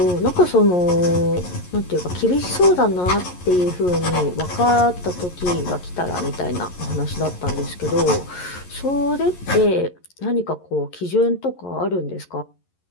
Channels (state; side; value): late; right; 11 ms